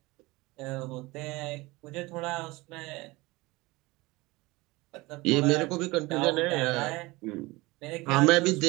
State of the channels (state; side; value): quieter; left; 21.9 dB